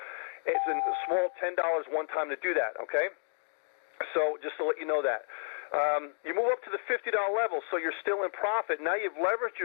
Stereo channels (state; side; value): silent; right; digital silence